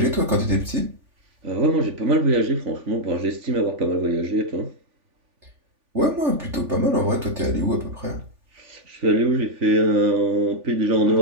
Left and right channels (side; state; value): left; late; 3.5 ms